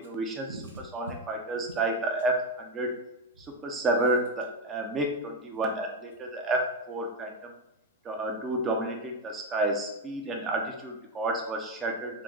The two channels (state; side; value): normal; both; correlation 0.08